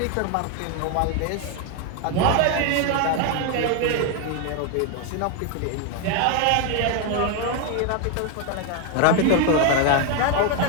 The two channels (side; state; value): both; different; correlation 0.01